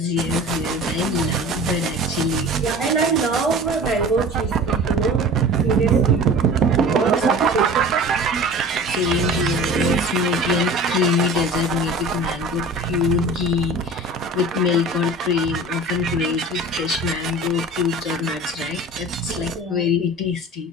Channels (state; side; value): normal; both; correlation 0.39